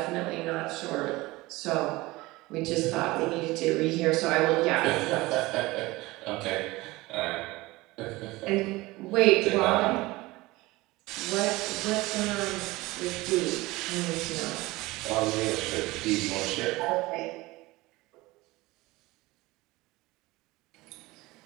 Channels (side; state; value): left; quieter; 20.5 dB